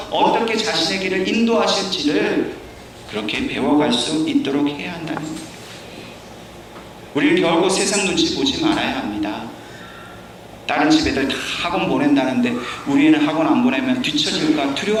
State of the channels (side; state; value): both; identical; correlation 1.00